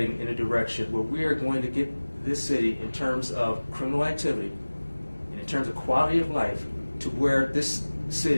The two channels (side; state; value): both; inverted; correlation -1.00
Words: in a direction where we are going to get this city, in terms of criminal activity and in terms of quality of life, to where this